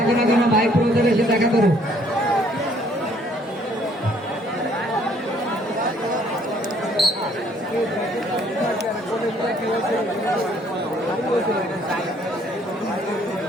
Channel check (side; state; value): both; normal; correlation 0.63